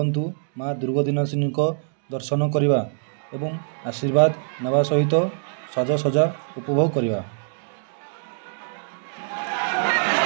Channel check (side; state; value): left; silent; digital silence